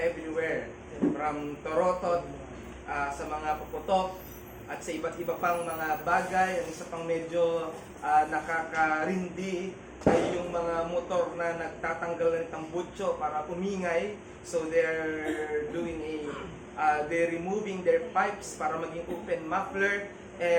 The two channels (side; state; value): both; identical; correlation 1.00